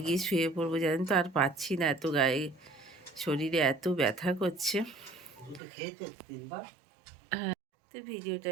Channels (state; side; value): drops out; left; at 5.6 s